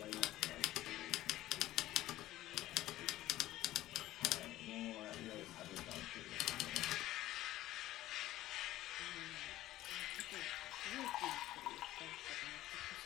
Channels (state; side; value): quieter; right; 15.2 dB